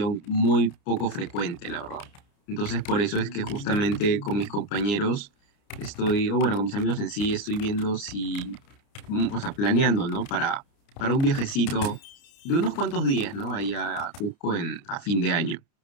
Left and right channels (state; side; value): late; right; 30 ms